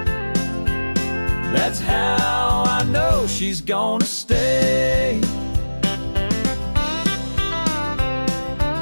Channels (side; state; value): both; inverted; correlation -1.00